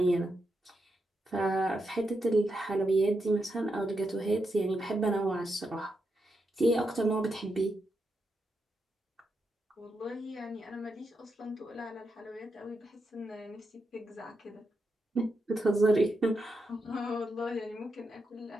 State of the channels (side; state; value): both; normal; correlation 0.85